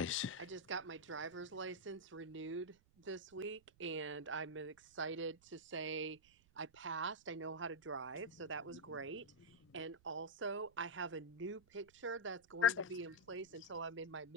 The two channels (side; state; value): right; noise; rumble, 29 dB below the sound